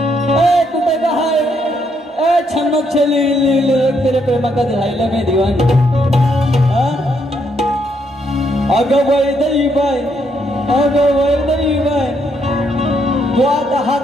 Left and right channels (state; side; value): normal; both; correlation 0.74